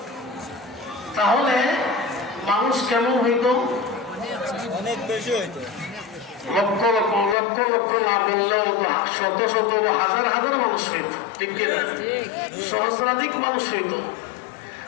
তাহলে মানুষ কেমন হইতো? অনেক বেশি হইতো। লক্ষ লক্ষ লক্ষ লক্ষ না বললেও শত শত বা হাজার হাজার মানুষ হইত, ঠিক কিনা? সহস্রাধিক মানুষ হইত।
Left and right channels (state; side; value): drops out; right; at 7.4 s